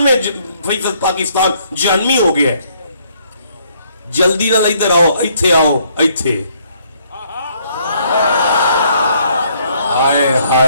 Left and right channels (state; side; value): inverted; both; correlation -0.67